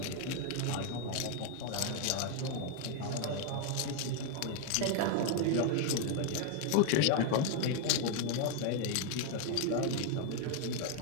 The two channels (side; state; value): both; different; correlation 0.01